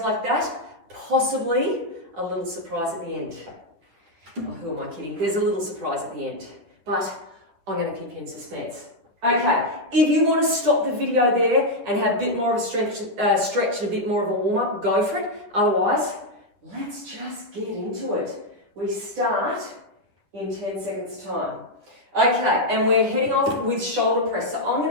that, possibly a little surprise at the end. Oh, who am I kidding? There's a little surprise at the end, but I'm going to keep you in suspense. Okay, if you want to stop the video there and have a bit more of a stretch and a bit more of a warm-up, go for it. Otherwise, let's just get into it. We start in 10 seconds time. Okay, and we're heading off with shoulder press. So I'm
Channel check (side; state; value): left; late; 10 ms